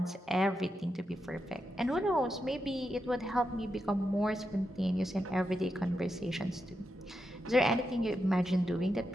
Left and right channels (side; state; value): both; normal; correlation 0.86